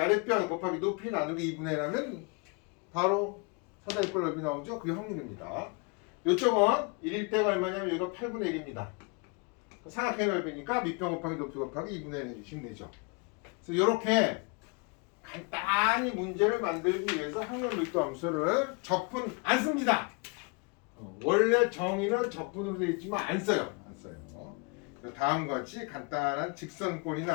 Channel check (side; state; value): right; quieter; 32.2 dB